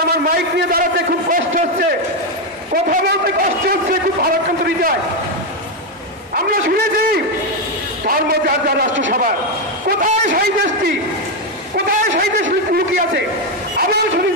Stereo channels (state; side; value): normal; both; correlation 0.05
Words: আমার মাইক নিয়ে দাঁড়াতে খুব কষ্ট হচ্ছে, কথা বলতে কষ্ট হচ্ছে, খুব ভারাক্রান্ত হৃদয়। আমরা শুনেছি ধর্ম যার যার রাষ্ট্রসভা, কোথায় সেই দেশটি, কোথায় সেই দেশ লুকিয়ে আছে? আবার